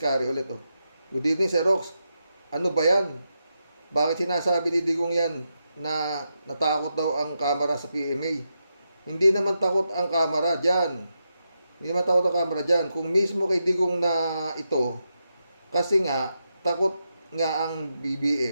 ulit Good evening, Sir Rox. Ano ba yan? Bakit sinasabi ni Digong yan na natakot daw ang kamera sa PMA? Hindi naman takot ang kamera dyan. Kung mismo kay Digong na ito, kasi nga, takot nga ang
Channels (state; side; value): inverted; both; correlation -0.86